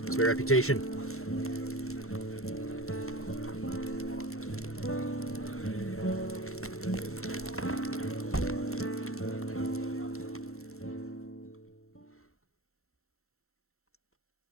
What's my reputation?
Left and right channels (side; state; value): right; late; 0.63 ms